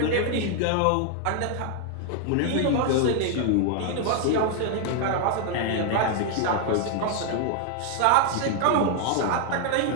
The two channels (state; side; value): different; both; correlation 0.00